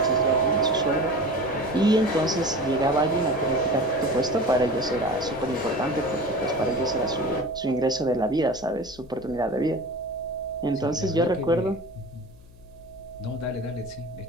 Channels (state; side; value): noise; left; hum, 23 dB below the sound